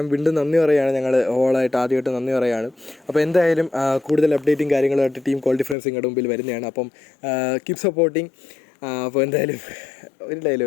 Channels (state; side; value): drops out; right; at 5.8 s